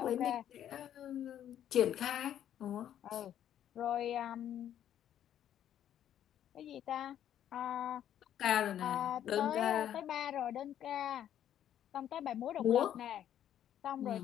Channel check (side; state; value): right; quieter; 10.6 dB